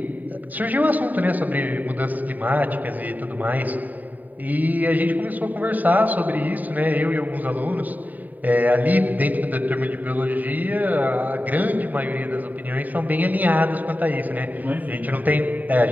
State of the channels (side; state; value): left; late; 0.082 ms